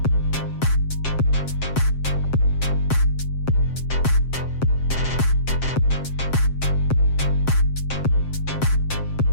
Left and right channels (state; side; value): late; right; 7.6 ms